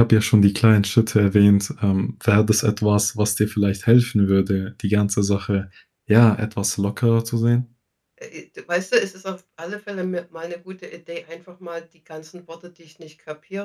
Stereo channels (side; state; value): both; identical; correlation 1.00